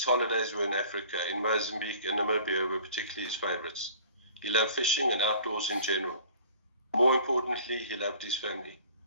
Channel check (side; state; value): both; inverted; correlation -0.48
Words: holidays were in Africa. In Mozambique and Namibia were particularly his favorites. He loved fishing and outdoors in general. More importantly, he loved his family.